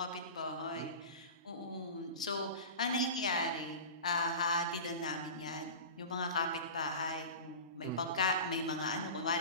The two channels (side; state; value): both; inverted; correlation -0.32